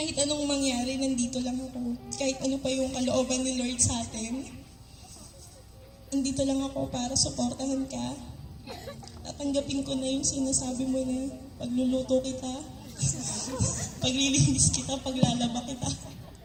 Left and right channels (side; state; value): both; identical; correlation 1.00